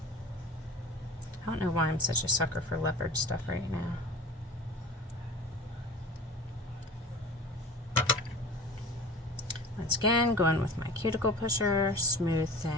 I don't know why I'm such a sucker for leopard stuff right now. Once again, going with my cuticle pusher, smooth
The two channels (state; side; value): normal; both; correlation 0.38